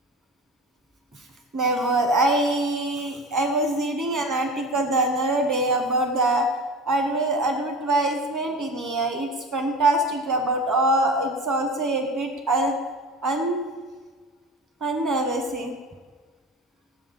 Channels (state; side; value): normal; both; correlation 0.32